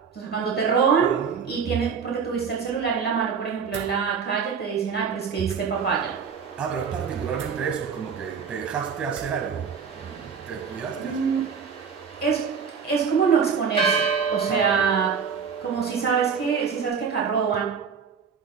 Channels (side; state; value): left; quieter; 6.3 dB